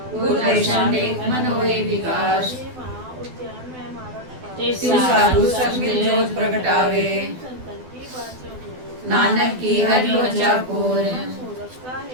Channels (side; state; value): left; late; 12 ms